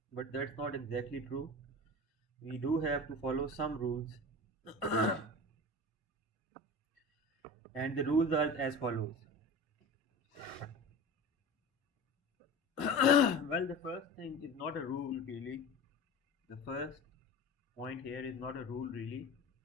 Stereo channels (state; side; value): normal; both; correlation 0.33